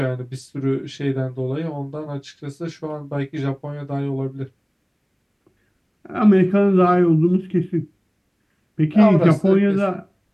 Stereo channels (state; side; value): identical; both; correlation 1.00